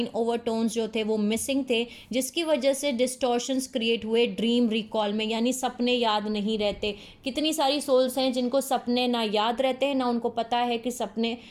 ओवर टोन्स जो थे वो मिसिंग थे, जिसकी वजह से डिस्टॉर्शंस क्रिएट हुए ड्रीम रिकॉल में, यानी सपने याद नहीं रहते। कितनी सारी सोल्स हैं जिनको सपने ना याद रहते हैं, ना उनको पता है कि सपने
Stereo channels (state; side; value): identical; both; correlation 1.00